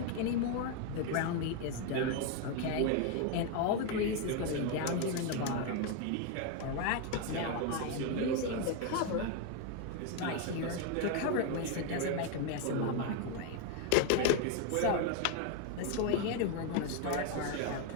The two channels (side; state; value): both; different; correlation 0.01